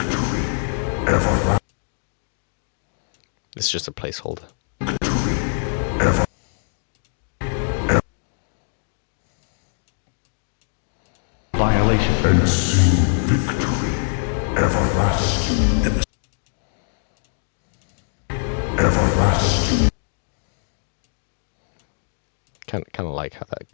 Everlasting. It's just a placeholder. Victory. Ever. Violation. And soon victory. Everlasting. Everlasting. Kind of like how that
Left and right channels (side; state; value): right; silent; digital silence